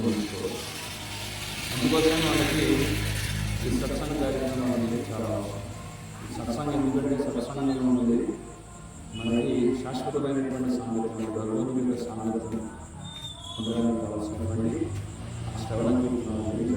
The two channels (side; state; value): both; identical; correlation 1.00